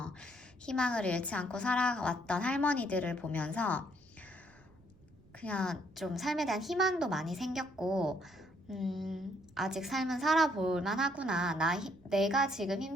희망을 잃지 않고 살아왔던 할머니들을 보면서 그냥 좀 삶에 대한 희망도 많이 생겼고, 아직 삶은 살아볼 만하구나. 내가 지금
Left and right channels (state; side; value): noise; right; rumble, 29 dB below the sound